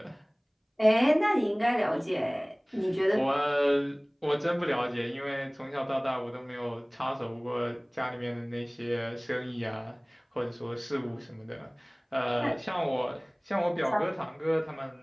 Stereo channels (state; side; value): identical; both; correlation 1.00